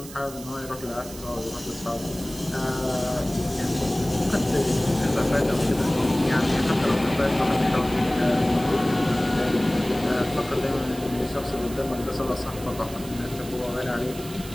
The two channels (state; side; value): noise; right; hiss, 15 dB below the sound